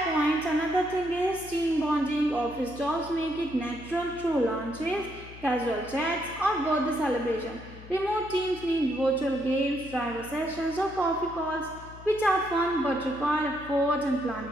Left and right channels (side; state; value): left; noise; hum, 17 dB below the sound